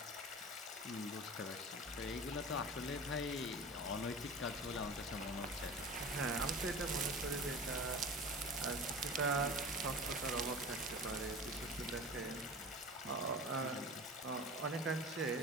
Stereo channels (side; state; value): both; normal; correlation 0.35